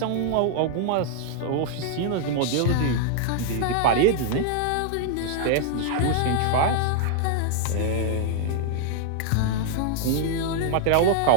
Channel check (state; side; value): different; both; correlation 0.00